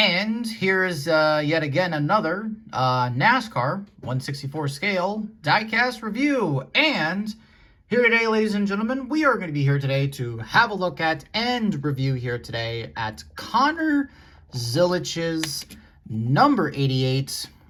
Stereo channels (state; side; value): identical; both; correlation 1.00